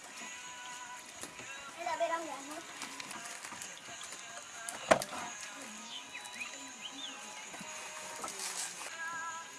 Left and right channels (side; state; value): both; identical; correlation 1.00